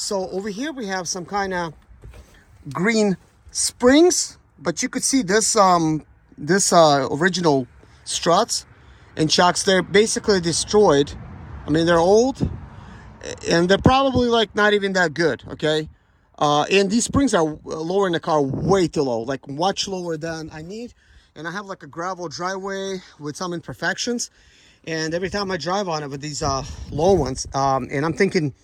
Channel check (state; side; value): identical; both; correlation 1.00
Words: over here we have some kind of green springs, but you could see this original struts and shocks. They're basically destroyed. I mean, they're old and they're probably like not even that good, okay? And these springs are lowering the car way too low, like much lower than I need. And I have like a gravel driveway with some imperfections, and every time I drive on it with these low ones, and I'm thinking